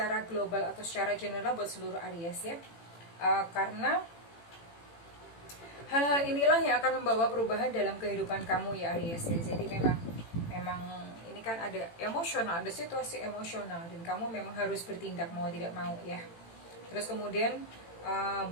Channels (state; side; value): late; right; 18 ms